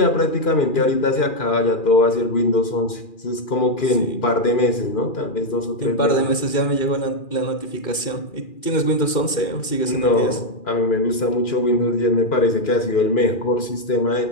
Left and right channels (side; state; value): right; late; 2.4 ms